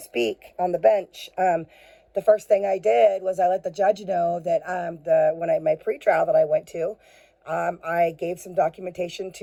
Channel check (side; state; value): both; identical; correlation 1.00